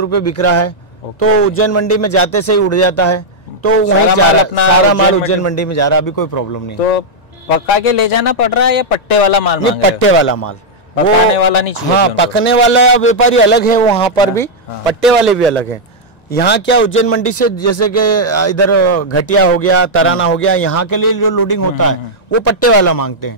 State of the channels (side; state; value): right; late; 1.9 ms